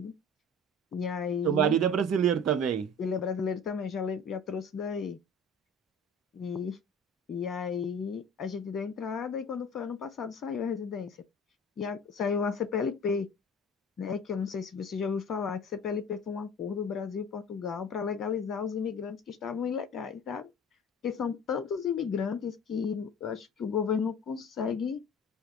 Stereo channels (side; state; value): both; normal; correlation 0.41